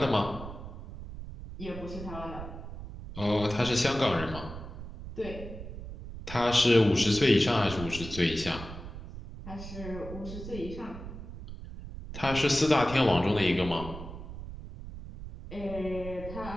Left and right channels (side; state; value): right; noise; rumble, 11 dB below the sound